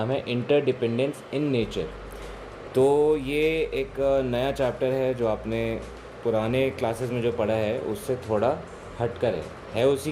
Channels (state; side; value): identical; both; correlation 1.00